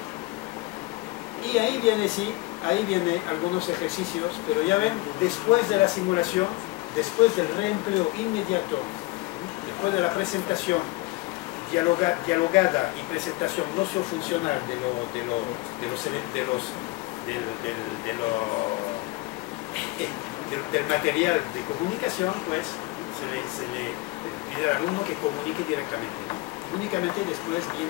¿Okay? Y ahí viene, sí, ahí vienen algunos ejercicios, pero ya ven, después de la simulación, después del reempleo inmediato, después de la presentación dialogada y presentación no-funcional del material de comunicación, pues se le pide al alumno que comunique directamente. Únicamente después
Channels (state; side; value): quieter; right; 21.2 dB